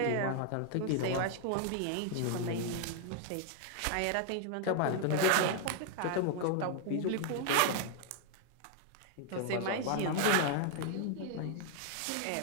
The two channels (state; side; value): different; both; correlation 0.00